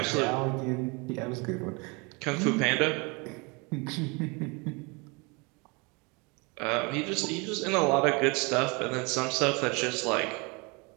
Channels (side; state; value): left; quieter; 29.2 dB